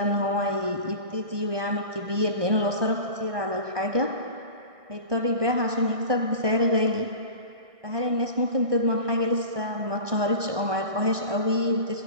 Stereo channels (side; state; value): left; late; 1.6 ms